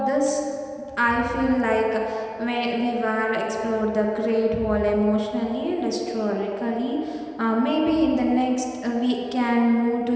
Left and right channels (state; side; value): identical; both; correlation 1.00